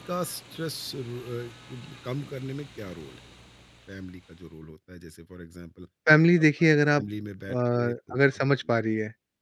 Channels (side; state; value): both; identical; correlation 1.00